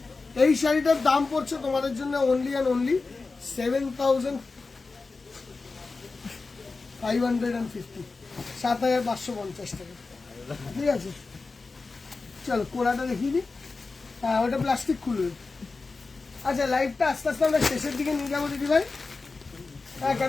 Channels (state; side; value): quieter; right; 4.0 dB